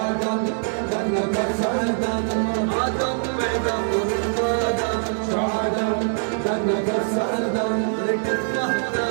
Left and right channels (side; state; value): left; silent; digital silence